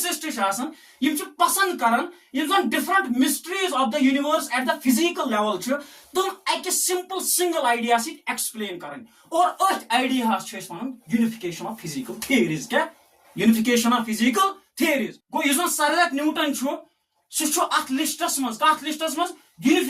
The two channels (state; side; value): identical; both; correlation 1.00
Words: पसंद करान different mysteries of the universe at the physical level तुम एक सिंपल सिंगल आइडिया एक्सप्लेन करान और अथ idea unification of physical theories क्या यूनिफिकेशन ऑफ फिजिकल थियरीज गो सर आइजैक न्यूटन सह लिस्टस मज